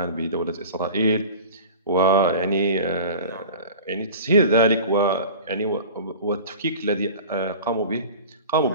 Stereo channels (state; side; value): inverted; both; correlation -0.38